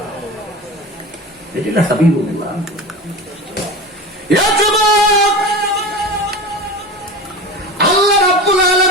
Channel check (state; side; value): normal; both; correlation 0.29